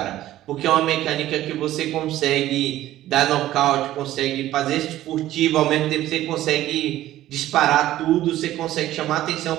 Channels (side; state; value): left; quieter; 14.2 dB